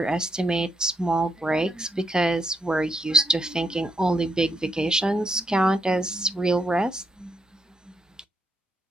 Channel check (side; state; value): both; normal; correlation 0.78